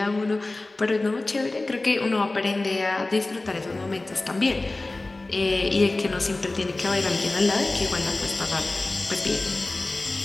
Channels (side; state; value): right; quieter; 3.0 dB